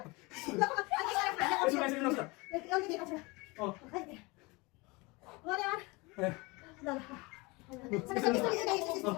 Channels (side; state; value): right; quieter; 25.4 dB